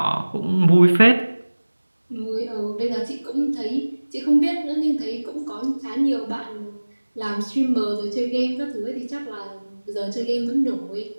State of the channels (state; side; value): inverted; both; correlation -1.00